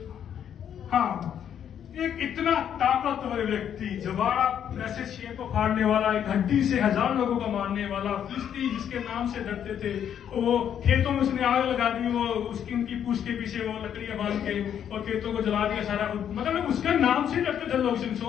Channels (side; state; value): right; quieter; 9.2 dB